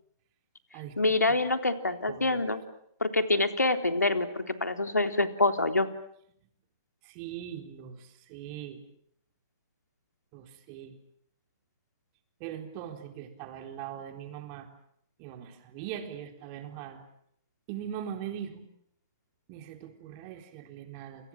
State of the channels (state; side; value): inverted; both; correlation -0.54